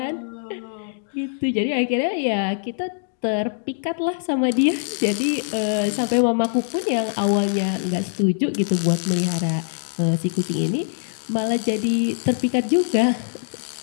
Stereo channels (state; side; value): silent; right; digital silence